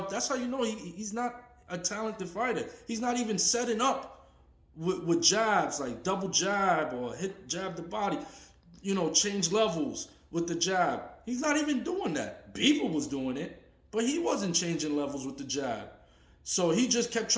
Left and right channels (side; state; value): both; identical; correlation 1.00